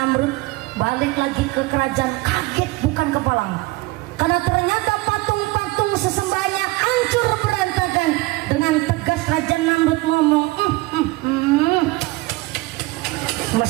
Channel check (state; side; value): quieter; left; 21.5 dB